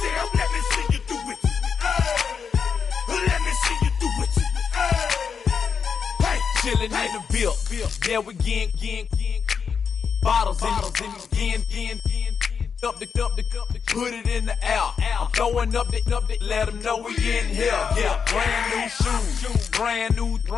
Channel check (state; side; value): quieter; right; 6.4 dB